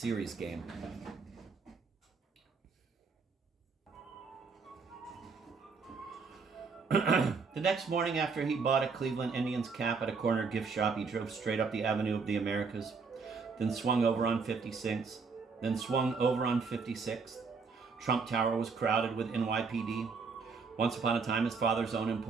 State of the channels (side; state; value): left; quieter; 4.9 dB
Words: game. The next morning, after he bought a Cleveland Indians cap at a corner gift shop, he drove straight up the Avenue of the Americas, then swung over on 56th. Trump Tower was crowded with NYPD. Once upon a time, his father's own